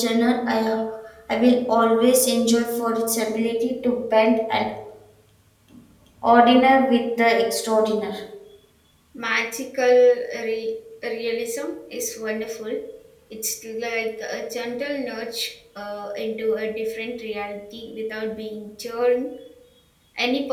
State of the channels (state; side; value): identical; both; correlation 1.00